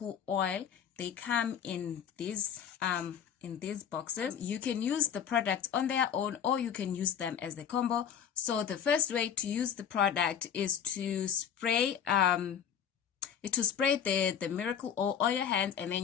oil. They come in these boxes. You can use the products on their own or you can use them as the combo. So the first way to use the product is to spray the miracle oil on your hands, and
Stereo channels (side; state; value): right; quieter; 8.3 dB